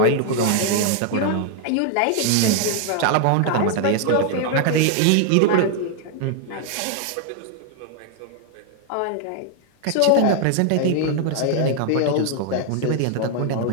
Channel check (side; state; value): both; different; correlation 0.00